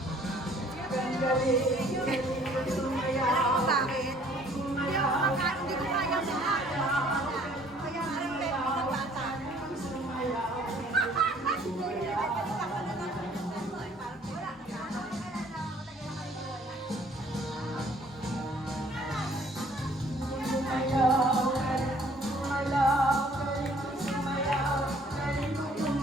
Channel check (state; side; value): normal; both; correlation 0.58